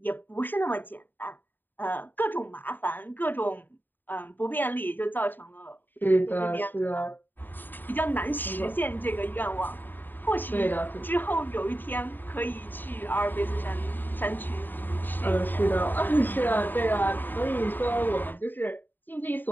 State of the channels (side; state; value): right; late; 0.091 ms